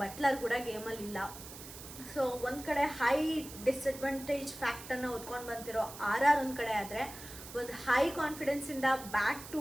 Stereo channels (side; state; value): right; noise; hiss, 14 dB below the sound